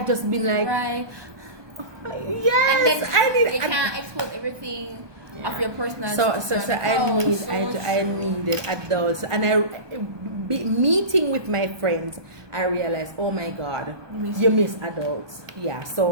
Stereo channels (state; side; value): late; left; 1.2 ms